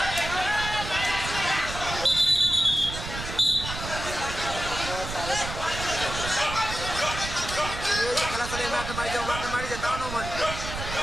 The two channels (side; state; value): right; noise; rumble, 8 dB below the sound